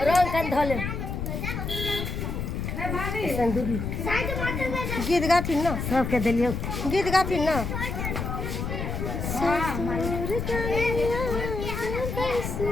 रोल कर धोले गीत गाथिन ना सबके दिलियो गीत गाथिन ना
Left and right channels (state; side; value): noise; left; rumble, 4 dB below the sound